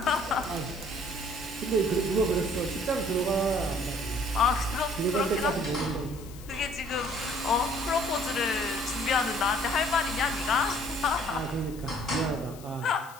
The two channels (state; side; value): noise; left; hiss, 20 dB below the sound